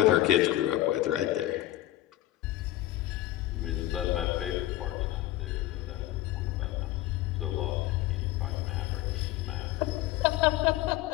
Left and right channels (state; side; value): quieter; right; 15.2 dB